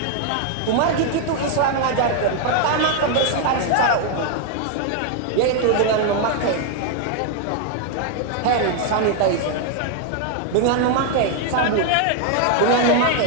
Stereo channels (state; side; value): different; both; correlation 0.00